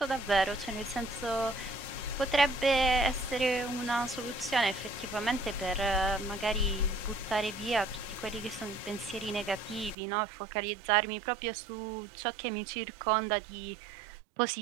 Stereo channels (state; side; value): drops out; left; at 10.0 s